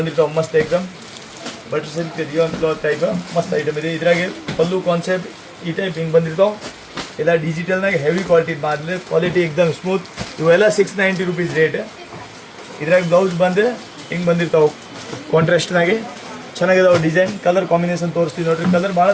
ಮಸ್ತ್ item. Butter silk rayon cloth type ಮಸ್ತ್ ಐಟಮ್ ಇದೆ. ಇದ್ರಾಗೆ ಪಲ್ಲು ಕಾನ್ಸೆಪ್ಟ್ ಈ ಟೈಪ್ ಹಿಂಗೆ ಬಂದಿರ್ತಾವೆ. ಎಲ್ಲ ಡಿಜಿಟಲ್ನಾಗ ಹೆವಿ ಕ್ವಾಲಿಟಿ ಮಾಡಲಿ, ಕ್ವಾಲಿಟಿ ಎಕ್ದಮ್ ಸ್ಮೂತ್. ಇವೆಲ್ಲ 690 rupees ರೇಟ್. ಇದ್ರಾಗ ಬ್ಲೌಸ್ ಬಂದು ಹಿಂಗೆ ಬಂದಿರ್ತಾವೆ ಕಾಂಟ್ರಾಸ್ಟ್ನಾಗೆ. ಚೆನ್ನಾಗಿದಾವೆ ಡಿಸೈನ್. ಕಲರ್ ಕಾಂಬಿನೇಷನ್ ತೋರಿಸ್ತೀವಿ ನೋಡ್ರಿ. ಕಲರ್ ಭಾಳ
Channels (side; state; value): both; identical; correlation 1.00